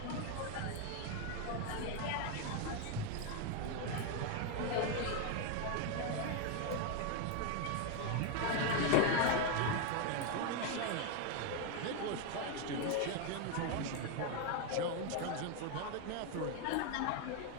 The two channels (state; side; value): different; both; correlation 0.01